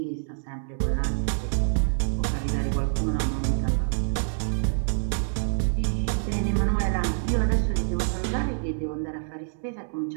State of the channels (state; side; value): silent; left; 61 dB below the other